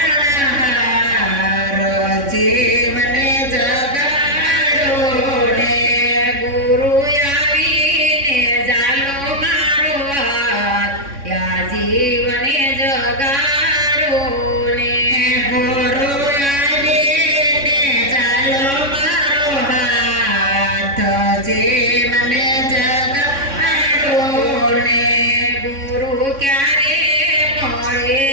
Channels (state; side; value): late; left; 3.6 ms